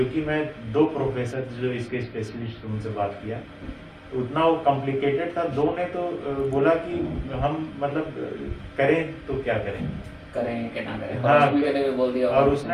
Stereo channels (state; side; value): identical; both; correlation 1.00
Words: मैं 2 प्रोफेसर जो इसके स्पेशलिस्ट उनसे बात किया, तो उतना वो कॉम्प्लिकेटेड था। 2 ने तो बोला कि हम मतलब करें तो क्या करें, करें कि ना करें। हाँ, के लिए भी बोल दिया और